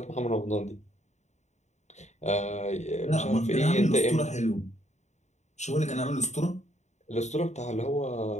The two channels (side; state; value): right; late; 0.33 ms